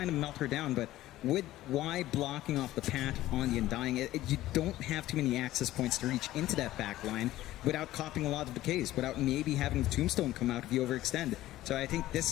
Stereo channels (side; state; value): right; quieter; 15.3 dB